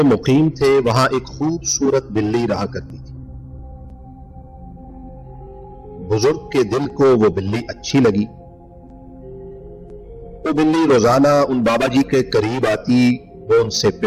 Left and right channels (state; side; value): identical; both; correlation 1.00